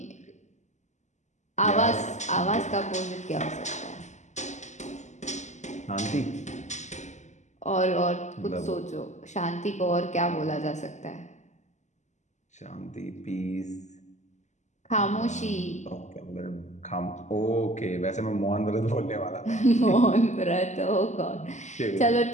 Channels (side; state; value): right; late; 0.34 ms